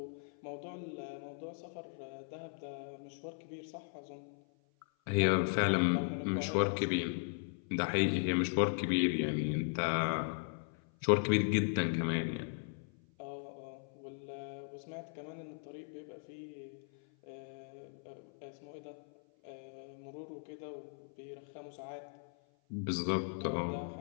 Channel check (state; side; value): silent; right; 53 dB below the other